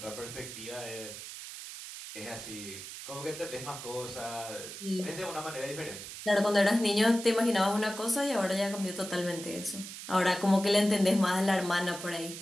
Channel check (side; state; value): right; noise; hiss, 11 dB below the sound